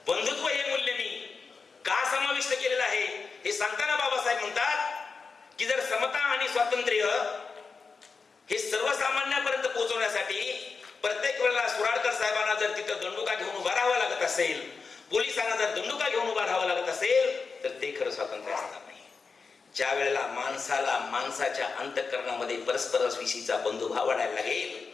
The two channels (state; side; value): quieter; right; 4.8 dB